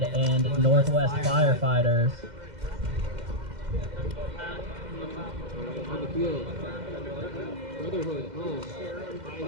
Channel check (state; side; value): late; left; 2.1 ms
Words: and Northwest Firefighters. On the field, Brotherhood home,